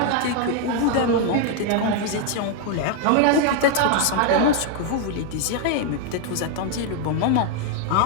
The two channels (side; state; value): both; different; correlation 0.01